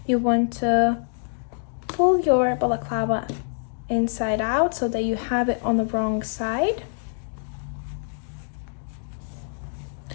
you want to pull your balaclava inside out so that you have it on the wrong side,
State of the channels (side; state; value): right; silent; digital silence